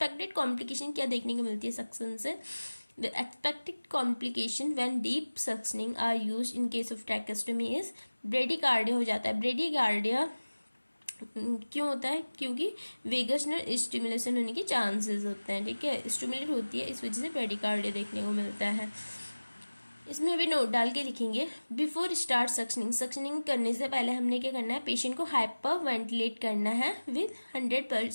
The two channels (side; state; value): both; inverted; correlation -1.00